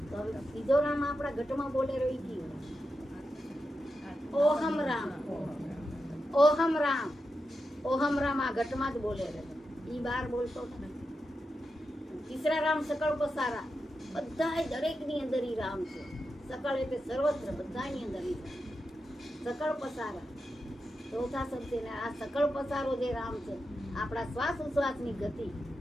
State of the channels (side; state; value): both; normal; correlation 0.88